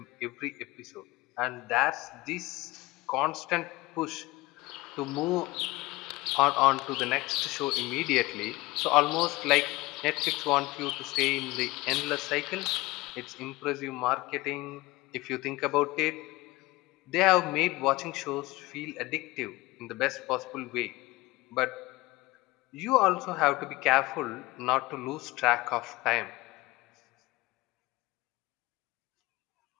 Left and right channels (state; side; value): quieter; right; 20.6 dB